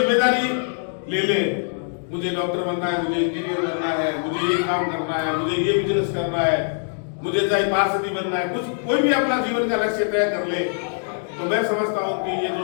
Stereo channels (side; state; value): right; silent; digital silence